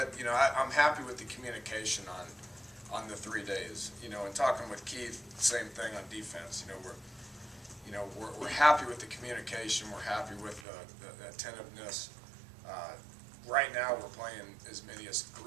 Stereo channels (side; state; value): left; drops out; at 10.7 s